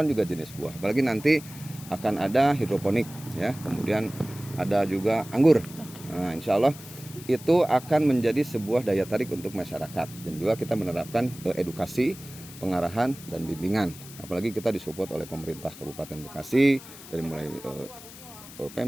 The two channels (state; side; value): noise; left; hiss, 16 dB below the sound